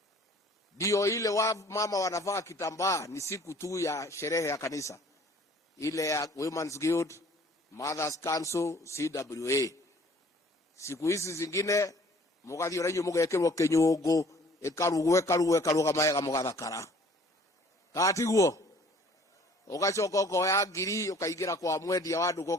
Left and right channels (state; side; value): normal; both; correlation 0.54